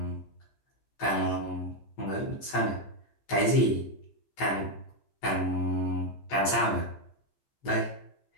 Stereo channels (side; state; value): right; late; 14 ms